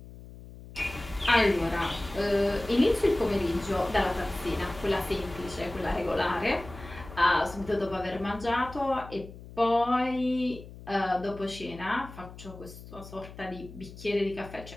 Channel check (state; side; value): noise; left; hum, 16 dB below the sound